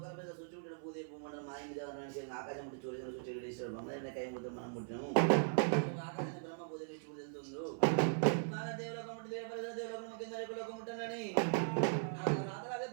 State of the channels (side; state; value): left; silent; 52 dB below the other